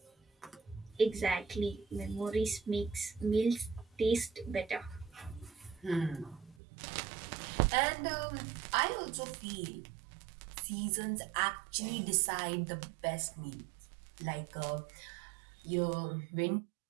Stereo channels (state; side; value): drops out; left; at 6.6 s